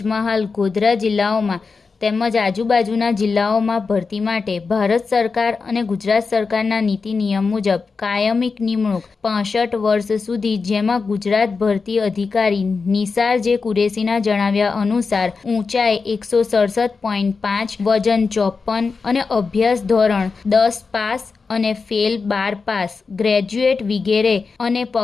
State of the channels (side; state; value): right; quieter; 4.7 dB